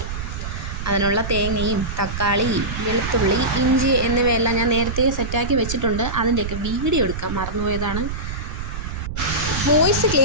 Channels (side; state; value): right; noise; rumble, 6 dB below the sound